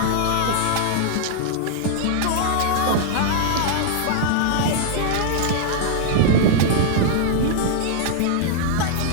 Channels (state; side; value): different; both; correlation -0.01